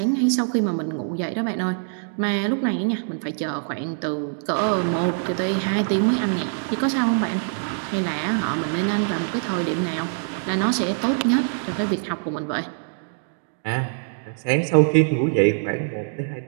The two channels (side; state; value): left; silent; digital silence